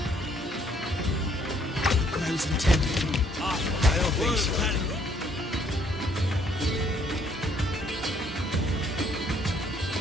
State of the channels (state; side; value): normal; both; correlation 0.65